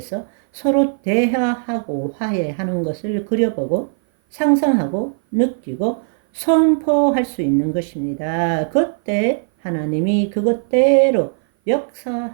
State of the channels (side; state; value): left; silent; 57 dB below the other